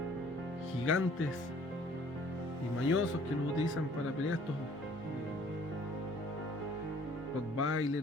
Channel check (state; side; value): normal; both; correlation 0.56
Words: gigantes y mañosos que los utilizan para pelear, estos